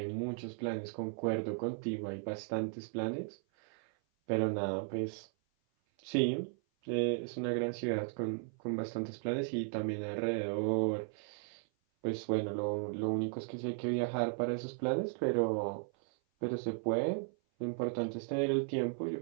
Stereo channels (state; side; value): silent; left; 54 dB below the other